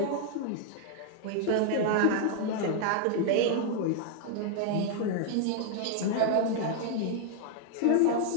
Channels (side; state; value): both; different; correlation 0.00